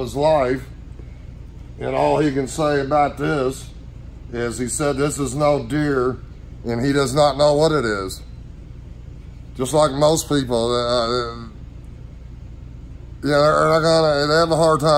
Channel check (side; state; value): both; identical; correlation 1.00